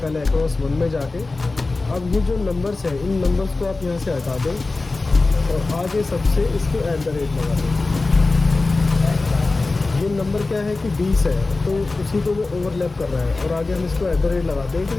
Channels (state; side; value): quieter; right; 3.5 dB